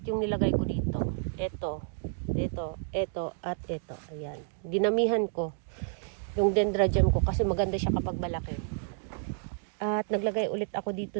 yung nilagay ko dito. Ito, at ito. Ayan. Dinamihan ko yung Dendra Gem ko kasi maganda siya kapag malaki. At naglagay ulit ako dito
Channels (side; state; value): left; silent; digital silence